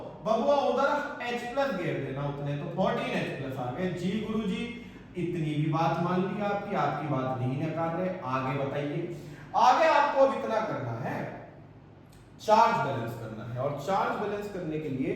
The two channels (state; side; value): identical; both; correlation 1.00